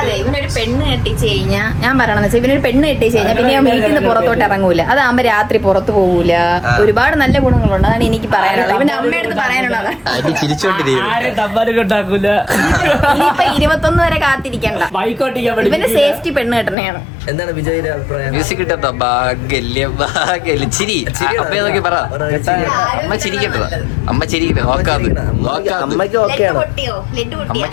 ഇവനൊരു പെണ്ണ് കെട്ടിച്ച് കഴിഞ്ഞാൽ, ഞാൻ പറയണെന്ന് വെച്ചാൽ ഇവനൊരു പെണ്ണ് കെട്ടിച്ച് കഴിഞ്ഞാൽ പിന്നെ ഞാൻ വീട്ടിൽ നിന്ന് പുറത്തോട്ട് ഇറങ്ങൂല. അതാകുമ്പോ രാത്രി പുറത്ത് പോകൂല. ഒരുപാട് നല്ല ഗുണങ്ങളുണ്ട്. അതാണ് എനിക്ക് പറയാനുള്ളത്. ഇവന്റെ അമ്മയടുത്ത് പറയാനുള്ളത്. ഇനിയിപ്പൊ 21 വരെ കാത്തിരിക്കണ്ട. ഇവന്റെ സേഫ്റ്റി പെണ്ണ് കെട്ടണയാണ്. എന്താണ് വിജയുടെ അഭിപ്രായം മ്യൂസിക് കിട്ടോ ചിരി അപ്പൊ നോക്കി പറ അമ്മ ചിരിക്കട്ടോ അമ്മ ചിരിക്കട്ടെ നോക്കാത് അമ്മയ്ക്ക് ഓക്കെയാണ് പൊട്ടിയോ? ലെഡ് പൊട്ടിയോ?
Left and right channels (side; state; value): right; drops out; at 16.8 s